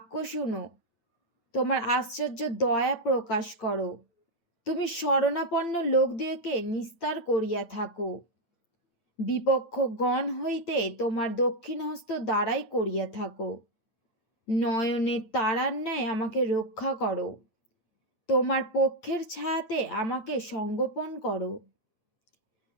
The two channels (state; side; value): late; right; 9.0 ms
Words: শুনো, তোমার আশ্চর্য দয়া প্রকাশ করো। তুমি শরণাপন্ন লোকদিওকে নিস্তার করিয়া থাকো। বিপক্ষ গণ হইতে তোমার দক্ষিণ হস্ত দ্বারাই করিয়া থাকো। নয়নের তারার ন্যায় আমাকে রক্ষা করো। তোমার পক্ষের ছায়াতে আমাকে সংগোপন করো।